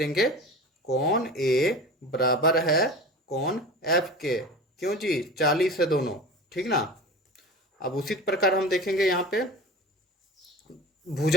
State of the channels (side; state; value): both; normal; correlation 0.34